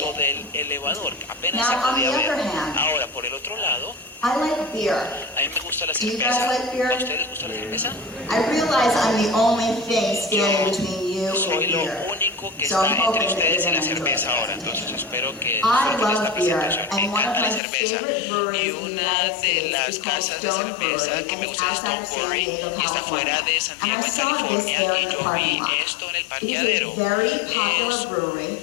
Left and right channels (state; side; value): drops out; right; at 17.6 s